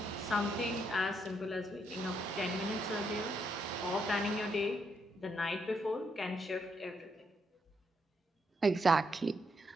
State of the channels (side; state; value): both; normal; correlation 0.77